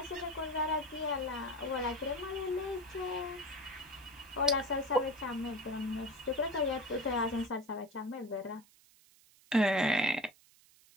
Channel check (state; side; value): noise; right; hiss, 27 dB below the sound